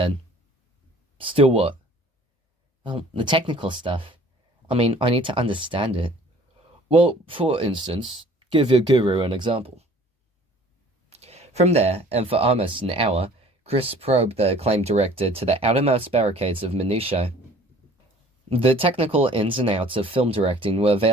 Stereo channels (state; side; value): normal; both; correlation 0.51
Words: Still what? Well, the technical stuff. I mean, I need to understand it. Well, for instance, give your guru an example. From there, and for almost an hour, Chris probed the acclaimed director to the outermost barricades of minutiae. The technical ins and outs of film directing were